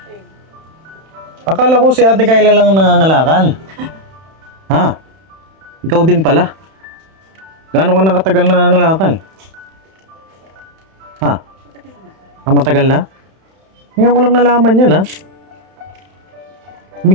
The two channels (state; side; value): late; left; 31 ms